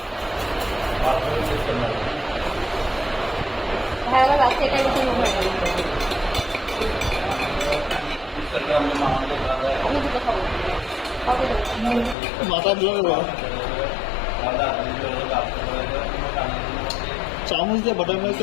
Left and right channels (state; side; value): drops out; right; at 12.2 s